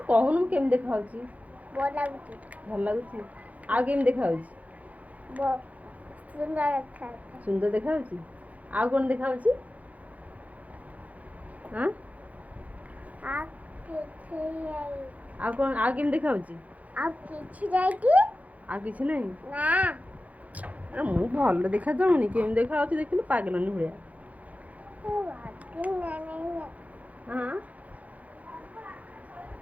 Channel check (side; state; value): left; late; 0.072 ms